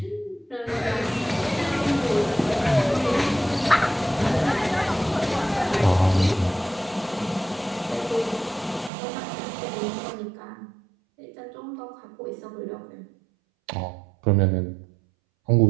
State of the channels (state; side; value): drops out; left; at 8.9 s